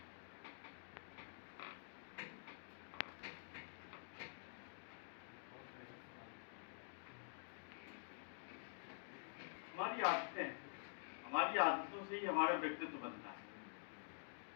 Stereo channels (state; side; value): silent; right; digital silence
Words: हमारी आदतों से ही हमारा व्यक्तित्व बनता है।